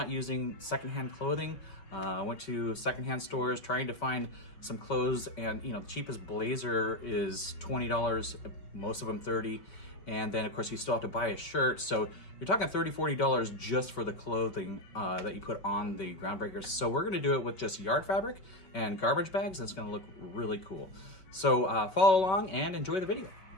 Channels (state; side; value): late; right; 5.2 ms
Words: using secondhand clothing. I went to secondhand stores trying to find some clothes, and the cheapest blazer is $20, most of them $30. And then of course you still have to buy a shirt. So you're talking $30, $40 just for the clothing that you put on the Groundbreakers. So we're gonna do it with just yard fabric and garbage bags, and it's gonna look really cool. So follow along and enjoy the video.